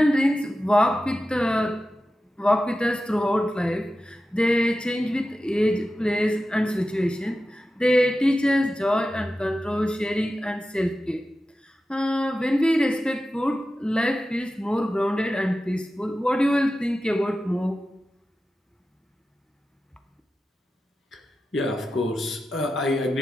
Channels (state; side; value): normal; both; correlation 0.93